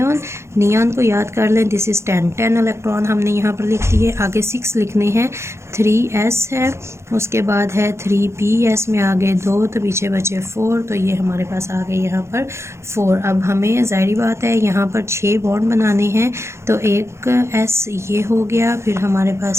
को याद कर लें, दिस इज़ 10 इलेक्ट्रॉन हमने यहाँ पर लिख दिए। आगे 6 लिखने हैं, 3s है, उसके बाद है 3ps में आगे 2, तो पीछे बचे 4, तो ये हमारे पास आ गए यहाँ पर 4। अब हमें ज़ाहिर बात है यहाँ पर 6 बॉन्ड बनाने हैं, तो एक s ये हो गया, फिर हमारे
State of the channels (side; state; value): left; late; 0.13 ms